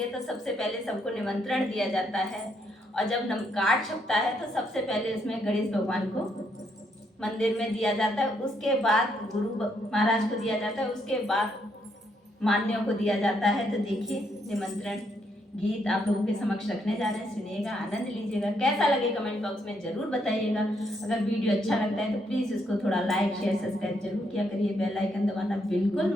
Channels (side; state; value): both; normal; correlation 0.75